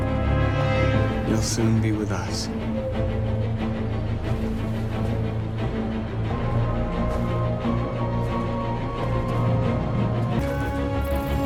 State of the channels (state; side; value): identical; both; correlation 1.00